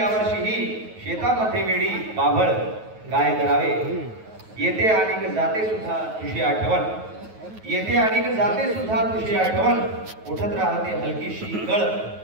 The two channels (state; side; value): late; left; 9.3 ms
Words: शेतामध्ये वेडी बाभळ काय करावे, येते आणि जाते सुद्धा तुझी आठवण, येते आणि जाते सुद्धा तुझी आठवण, उठत राहते हलकीशी गळ